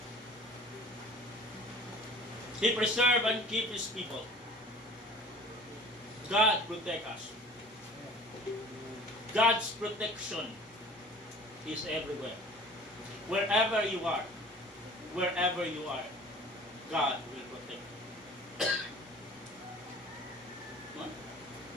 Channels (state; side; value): normal; both; correlation 0.45